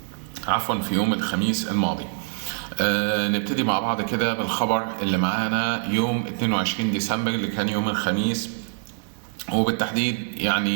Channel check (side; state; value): left; silent; digital silence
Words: في يوم الخميس الماضي. نبتدي مع بعض كده بالخبر اللي معانا يوم 22 ديسمبر اللي كان يوم الخميس، وبالتحديد